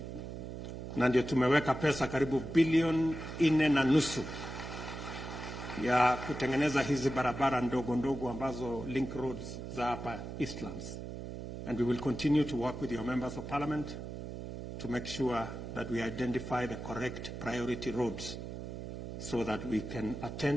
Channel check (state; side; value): noise; right; hum, 8 dB below the sound